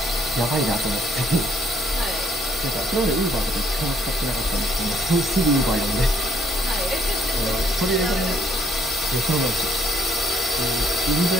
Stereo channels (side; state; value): both; normal; correlation 0.67